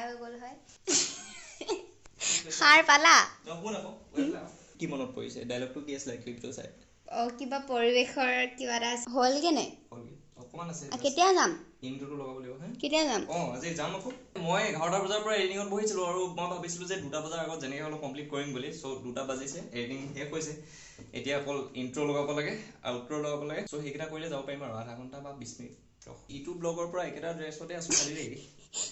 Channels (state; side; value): identical; both; correlation 1.00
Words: হৈ গ'ল হয় সাৰ পালা কি মনত পৰিছে ডায়লগটো কি আছিল ক্লিপটো চাই কিবা পৰিবেশৰ কিবা এটা হল কেনে অকমান আছে কেতিয়া যাম ইনট্ৰোটো লগাব লাগিব হে কেতিয়া যাম আজি যাম আকৌ মই 11টা বজাৰ পৰা এডিটিংত বহিছিলো আৰু মই ভাবিছিলো যে 2টা বজাৰ আগত যেনেকৈ হলো কমপ্লিট কৰিম বুলি সো 2টা বাজিছে এডিটিং শেষ হৈছে এতিয়া অকল ইনট্ৰো লগাব লাগে আউট্ৰো লগাব লাগে সো হেকিটা কৰিলে যাব পাৰিম আৰু আধা ঘণ্টা বা 20 মিনিট ইউটিউব ব্লগৰ পৰা একেটা ড্ৰেছতে আছো খালি দেই